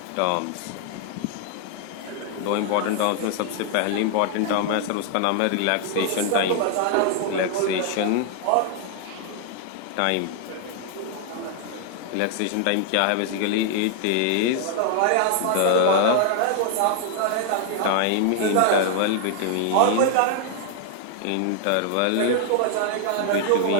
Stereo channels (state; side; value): different; both; correlation 0.00